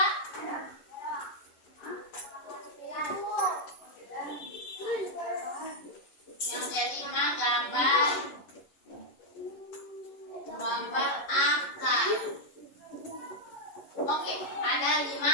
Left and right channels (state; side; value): late; right; 11 ms